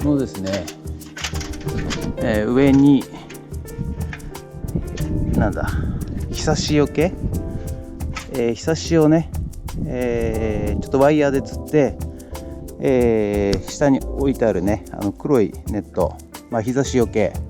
このですね、上にひさしよけ、ひさしをね、ちょっとワイヤーでつって、下に置いてあるね黒いネット、日差しよけ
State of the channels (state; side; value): identical; both; correlation 1.00